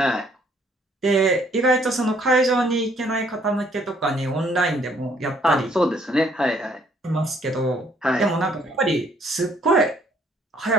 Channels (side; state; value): both; normal; correlation 0.65